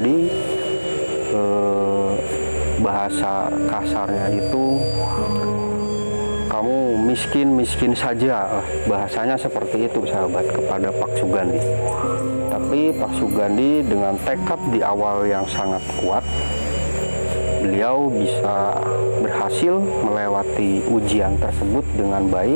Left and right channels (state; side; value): inverted; both; correlation -1.00